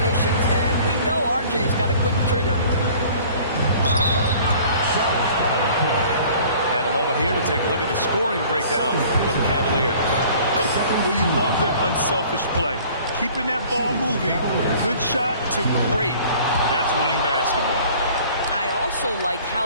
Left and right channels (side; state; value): both; inverted; correlation -0.50